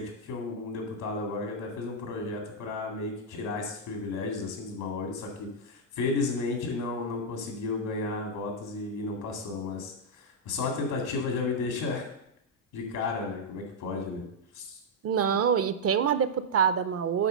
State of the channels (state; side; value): normal; both; correlation -0.05